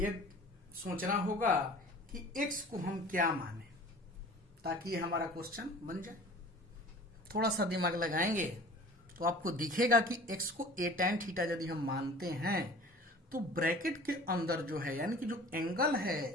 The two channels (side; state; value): both; normal; correlation 0.44